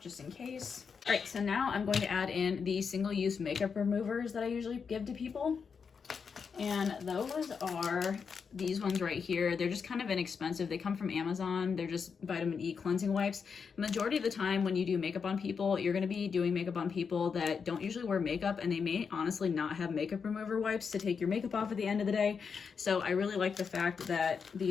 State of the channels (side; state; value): right; quieter; 5.9 dB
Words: in case. All right, so now I'm going to add in the single-use makeup removers that I usually give to people. And those are these ones right here. They're just kind of inexpensive. They come from Amazon. They're just vitamin E cleansing wipes. Majority of the time when you do makeup on people, you're going to be doing makeup on people that don't usually wear makeup, and they may honestly not have makeup remover wipes to take your makeup off at the end of the day. So I really like the fact that